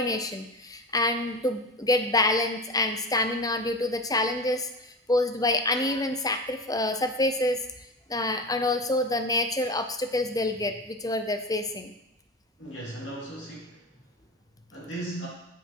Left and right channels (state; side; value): normal; both; correlation 0.26